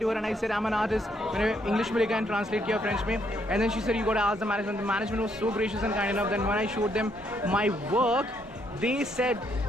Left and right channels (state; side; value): normal; both; correlation 0.73